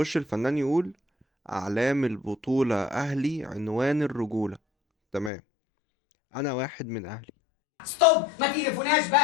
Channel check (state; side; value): drops out; right; at 5.3 s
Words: الفنان يقول: اعلام البطولة اهلي عنوان الرجولة. تمام. انا واحد من اهلي. ستوب، ما تقرفوناش